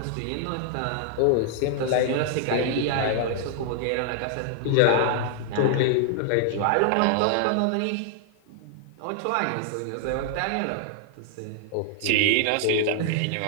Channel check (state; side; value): different; both; correlation 0.00